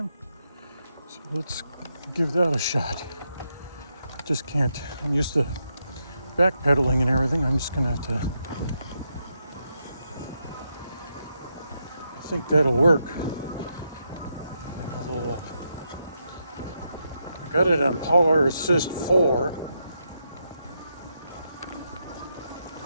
So let's give that a shot. I just can't, I'm used to backpedaling and everything. I'm just going to have to, I think that'll work. I got it on Power Assist 4.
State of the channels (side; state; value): both; inverted; correlation -0.83